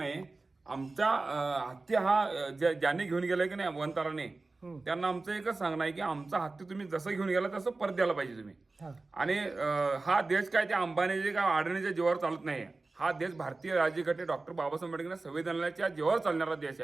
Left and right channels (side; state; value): left; quieter; 3.5 dB